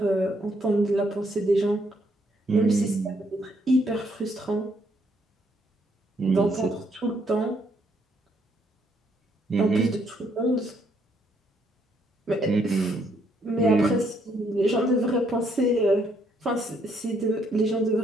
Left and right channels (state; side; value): normal; both; correlation 0.71